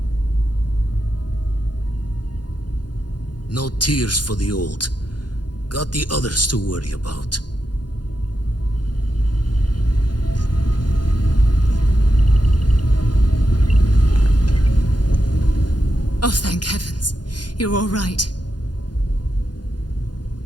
No tears for the old. Got the others to worry about. Oh, thank heavens. You're all right.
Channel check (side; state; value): right; late; 0.70 ms